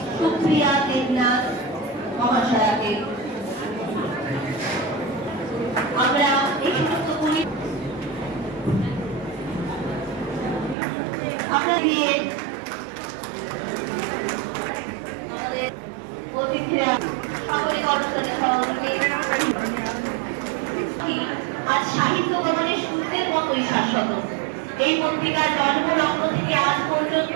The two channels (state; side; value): drops out; left; at 10.8 s